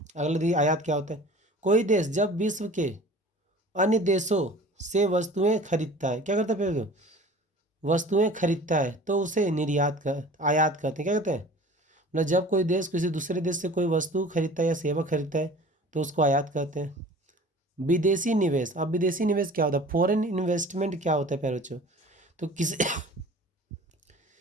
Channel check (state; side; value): normal; both; correlation 0.43